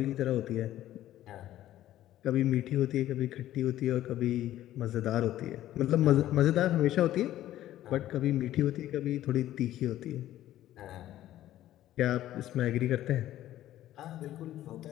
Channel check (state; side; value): quieter; right; 13.5 dB